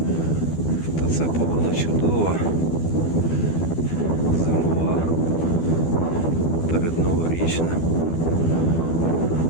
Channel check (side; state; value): right; late; 12 ms